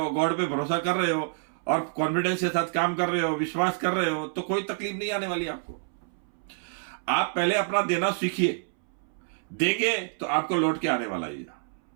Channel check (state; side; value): silent; left; 60 dB below the other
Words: गॉड पे भरोसा कर रहे हो और कॉन्फिडेंस के साथ काम कर रहे हो, विश्वास कर रहे हो, तो कोई तकलीफ नहीं आने वाली आपको। आप पहले अपना देना सीखिए। देंगे तो आपको लौट के आने वाला ही है।